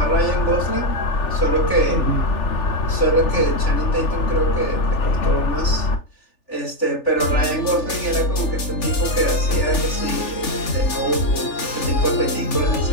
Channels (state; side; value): late; right; 3.4 ms